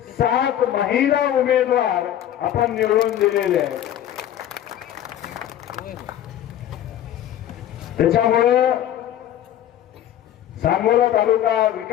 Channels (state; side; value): quieter; right; 11.4 dB